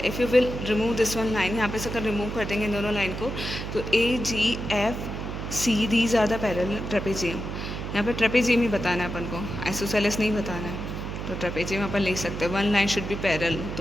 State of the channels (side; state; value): right; noise; hum, 6 dB below the sound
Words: If you will remove this one line, यहाँ पे से अगर रिमूव कर देंगे इन दोनों लाइन को, तो A G F C these are the parallel trapezium. यहाँ पे ट्रेपेजियम ही बताना है अपन को, आइसोसेलेस नहीं बताना है. तो ट्रेपेजियम अपन लिख सकते हैं. One line should be parallel,